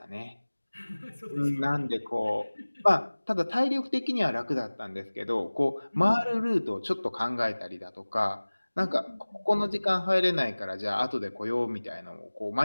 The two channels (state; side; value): inverted; both; correlation -1.00